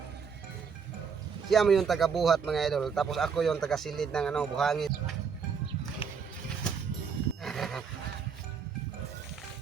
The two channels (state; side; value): quieter; left; 6.2 dB